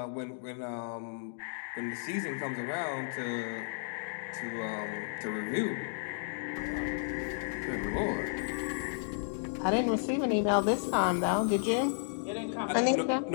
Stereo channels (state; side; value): silent; right; digital silence